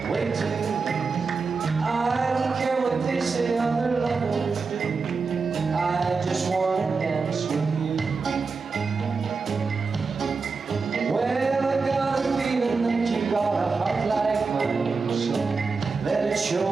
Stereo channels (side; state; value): left; quieter; 4.6 dB